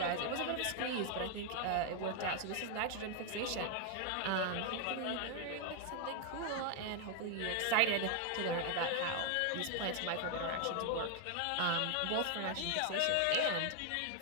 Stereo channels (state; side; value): different; both; correlation 0.00